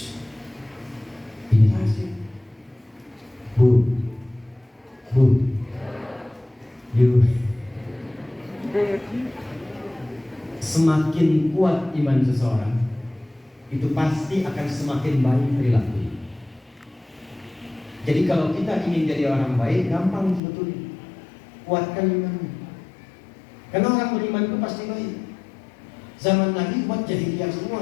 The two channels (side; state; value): right; drops out; at 20.4 s